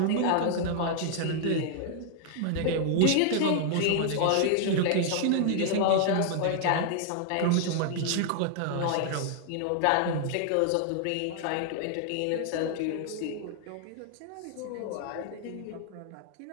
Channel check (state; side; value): different; both; correlation 0.00